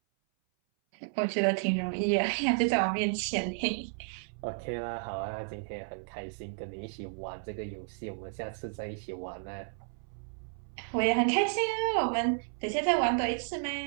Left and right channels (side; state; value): left; silent; 56 dB below the other